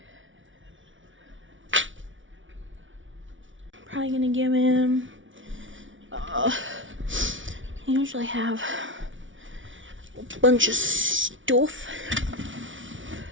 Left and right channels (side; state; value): left; late; 0.56 ms